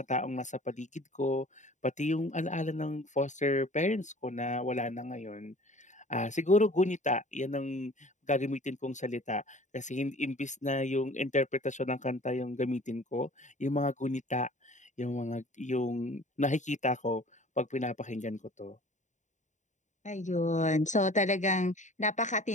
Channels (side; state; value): right; late; 0.35 ms